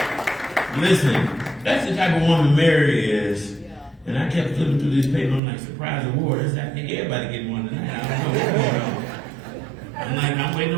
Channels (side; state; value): left; drops out; at 5.4 s